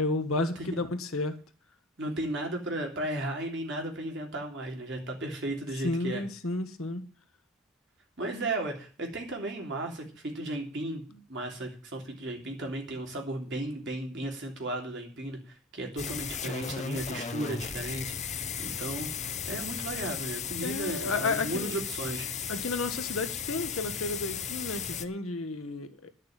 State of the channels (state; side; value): normal; both; correlation 0.30